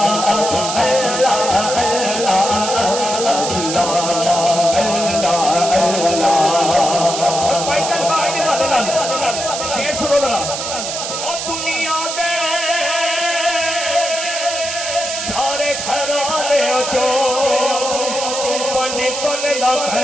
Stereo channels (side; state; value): right; noise; hiss, 4 dB below the sound